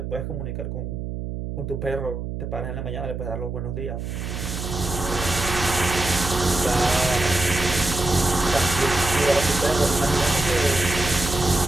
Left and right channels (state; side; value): noise; right; hum, 6 dB below the sound